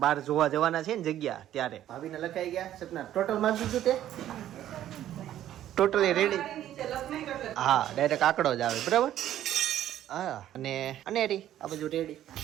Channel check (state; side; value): quieter; left; 12.1 dB